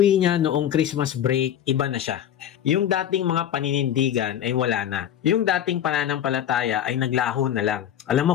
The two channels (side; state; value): right; quieter; 10.3 dB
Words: niya noong Christmas break, iba na siya. Yung dating mga paninindigan ay wala na. Yung dating pananampalataya ay naglaho na lang. Alam mo